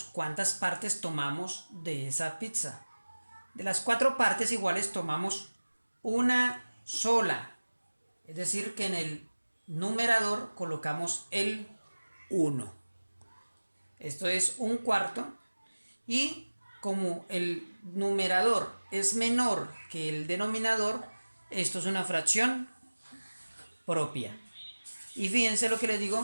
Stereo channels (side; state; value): both; inverted; correlation -1.00